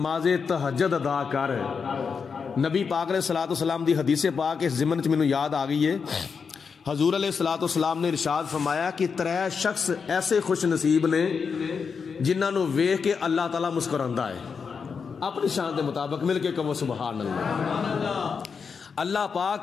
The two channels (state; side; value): quieter; right; 5.8 dB